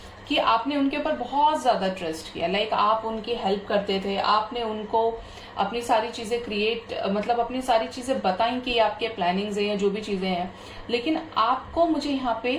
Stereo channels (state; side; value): identical; both; correlation 1.00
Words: कि आपने उनके ऊपर बहुत ज्यादा ट्रस्ट किया, लाइक आप उनकी हेल्प करते थे, आपने उनको अपनी सारी चीजें मतलब अपनी सारी चीजें बताई कि आपके प्लानिंग्स हैं या जो भी चीजें हैं, लेकिन आपको, मुझे यहाँ पे